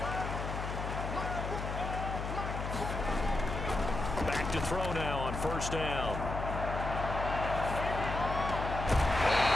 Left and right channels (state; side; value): noise; left; hum, 4 dB below the sound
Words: Back to throw now on 1st down.